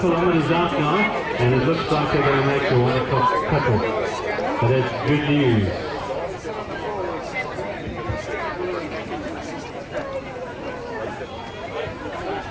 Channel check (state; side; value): identical; both; correlation 1.00